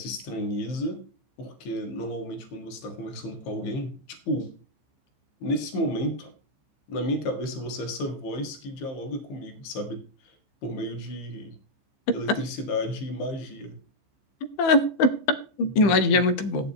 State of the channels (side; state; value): right; late; 15 ms